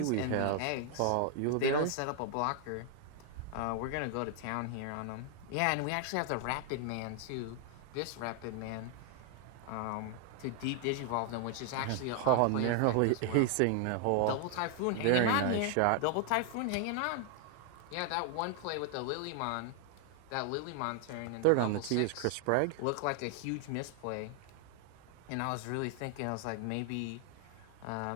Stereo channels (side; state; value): both; different; correlation 0.00